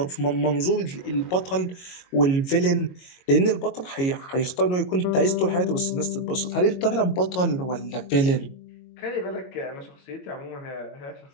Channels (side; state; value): right; late; 22 ms